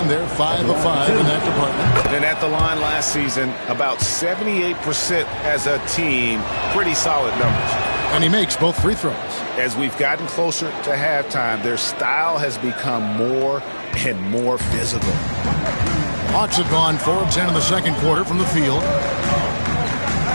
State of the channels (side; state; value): both; inverted; correlation -1.00